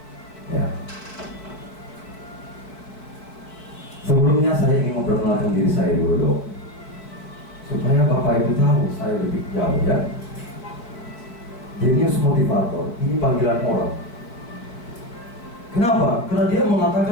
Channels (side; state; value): right; late; 4.5 ms